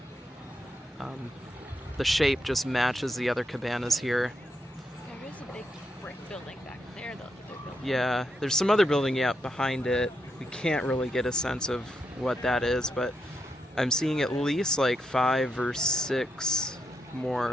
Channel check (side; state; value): both; normal; correlation 0.81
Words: the shape just matches the other cabanas here. There is a big brick building back there, though. Yeah, there's some other building behind it. We can't really get a sense of what that is, but I'm seeing at least like 5 or 6